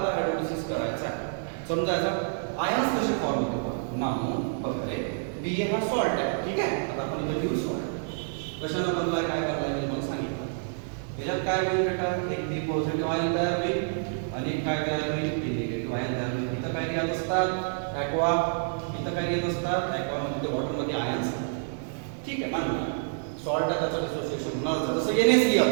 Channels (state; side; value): silent; left; digital silence